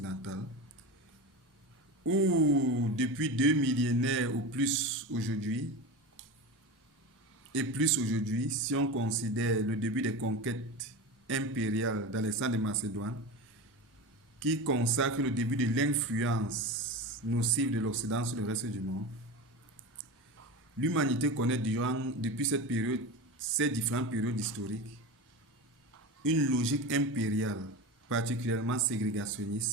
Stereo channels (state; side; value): normal; both; correlation 0.26